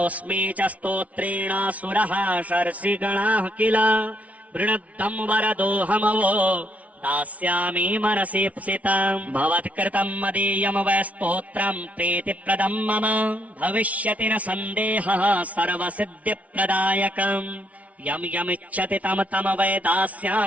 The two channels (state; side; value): late; left; 0.068 ms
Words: च स्तोत्रेण सुरः शर्षिगणाः किल वृणद्धं वरदोऽहमवो दास्यामि मनसीप्सितम् भवत्कृतं मदीयं वै स्तोत्रं प्रीतिप्रदं मम भविष्यति न सन्देहः सर्वसिद्धिप्रदायकम् यं यमिच्छति तं तं वै